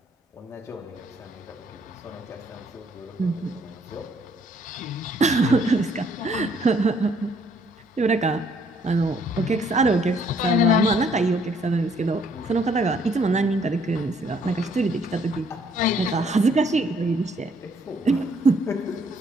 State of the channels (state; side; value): normal; both; correlation 0.65